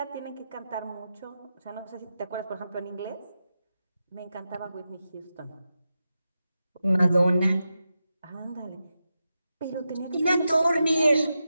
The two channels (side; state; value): both; inverted; correlation -0.90